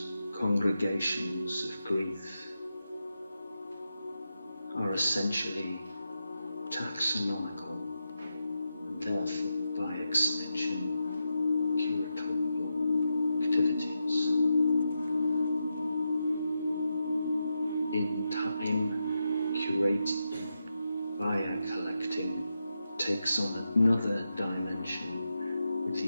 congregations of grief, are essentially taxonomical and therefore by extension curatorial activities. In time, curating via collecting takes on another dimension with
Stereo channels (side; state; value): both; inverted; correlation -0.87